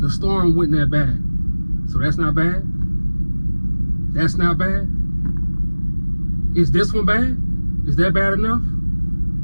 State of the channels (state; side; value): inverted; both; correlation -1.00